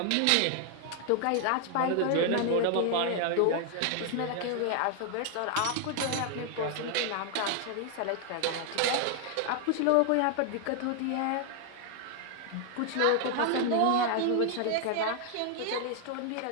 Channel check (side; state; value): both; different; correlation 0.00